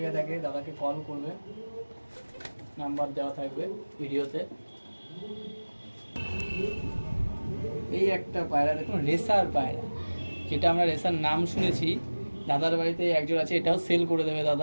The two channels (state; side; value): inverted; both; correlation -1.00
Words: থাকে দাদাকে কল করবে, নাম্বার দেওয়া থাকবে ভিডিওতে। এই একটা পায়রা দেখুন, রেসার পায়রা, যেটা আমরা রেসার নাম শুনেছি। দাদার বাড়িতে একজন আছে, এটাও সেল করে দেবে